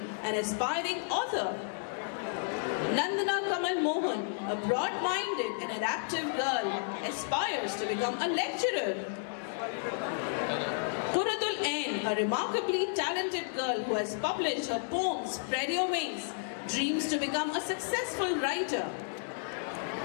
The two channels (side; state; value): right; silent; 56 dB below the other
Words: an aspiring author. Nandana Kamal Mohan, a broad-minded and adaptive girl, aspires to become a lecturer. Quratul Ain, a remarkably talented girl who has published her poem Spread Your Wings, dreams to become a successful writer.